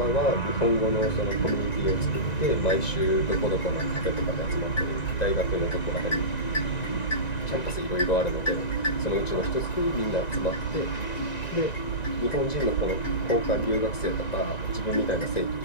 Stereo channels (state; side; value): late; right; 1.9 ms